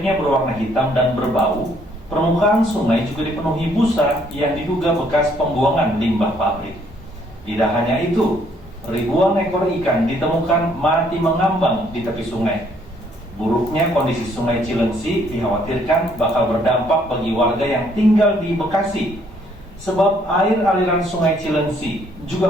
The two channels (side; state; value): both; normal; correlation 0.66